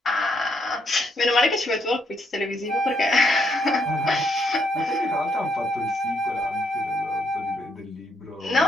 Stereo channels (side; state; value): both; normal; correlation 0.74